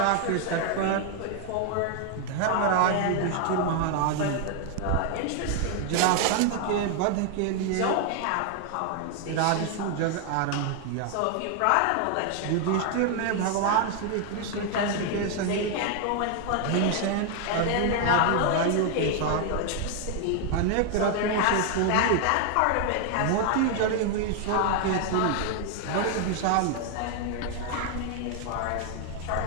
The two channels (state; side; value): different; both; correlation 0.00